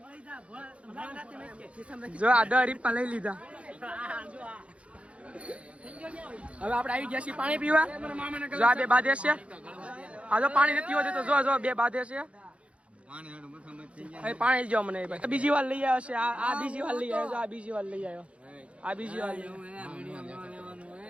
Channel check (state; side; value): late; left; 0.062 ms